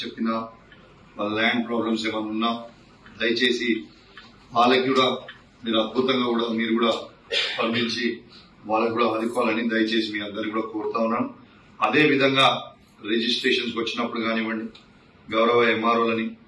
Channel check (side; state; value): both; identical; correlation 1.00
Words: వాళ్ళ ల్యాండ్ ప్రాబ్లమ్స్ ఏమైనా ఉన్నా దయచేసి వాళ్ళకి కూడా మీరు అద్భుతంగా కూడా మీరు కూడా స్పందించి వాళ్ళకు కూడా ఆదుకోవాలని దయచేసి మీ అందరికీ కూడా కోరుతా ఉన్నాను. అదేవిధంగా రిజిస్ట్రేషన్స్ వచ్చినప్పుడు కానివ్వండి, గౌరవ ఎంఆర్ఓలని